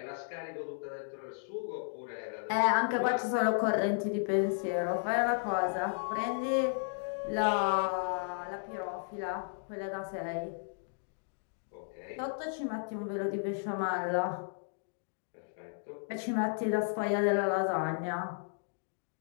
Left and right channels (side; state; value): right; silent; digital silence